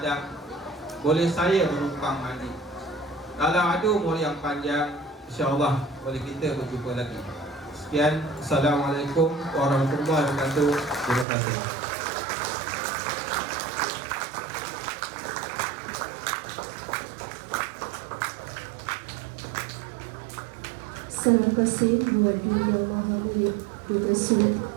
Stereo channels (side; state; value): left; drops out; at 11.2 s